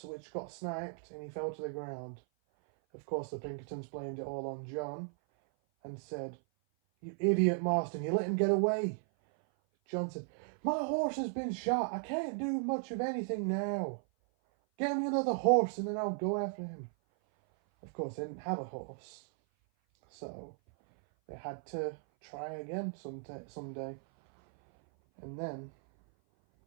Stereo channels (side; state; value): left; silent; 54 dB below the other